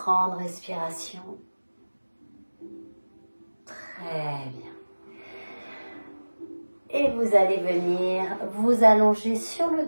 respirations. Très bien. Et vous allez venir vous allonger sur le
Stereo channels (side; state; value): both; inverted; correlation -1.00